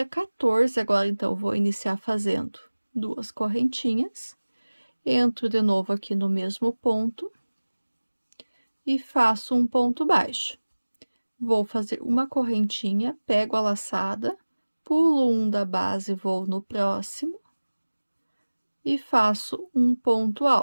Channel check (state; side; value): inverted; both; correlation -1.00